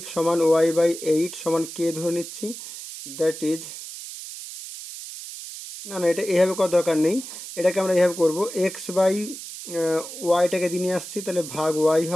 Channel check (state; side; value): noise; right; hiss, 11 dB below the sound